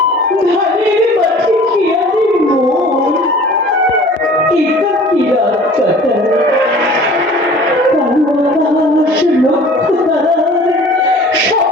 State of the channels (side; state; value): both; normal; correlation 0.47